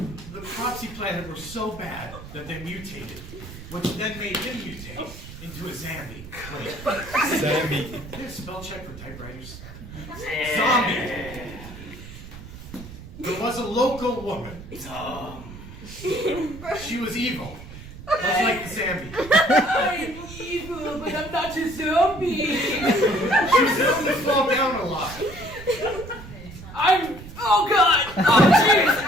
The crops he planted were so bad that they mutated, which then made him mutate into a zombie. Wait. Zombie. Is there a spell check for typewriters? Zombie. There was a local woman. She was evil. Much like the zombie. I'm evil, but I'm not a zombie. She was known to fall down a lot. Oh god! Oh jeez!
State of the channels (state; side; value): noise; right; rumble, 14 dB below the sound